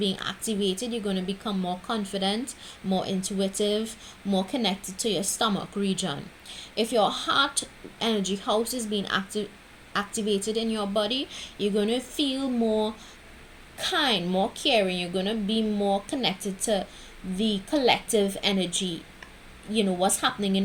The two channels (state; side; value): identical; both; correlation 1.00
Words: activated, you're going to become more confident, more intuitive, more connected to your stomach region. If your heart energy house is being activated in your body, you're going to feel more kind, more caring. You're going to be more connected to the collective energy, you know, what's happening